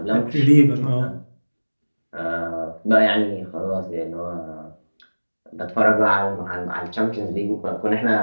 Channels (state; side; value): inverted; both; correlation -1.00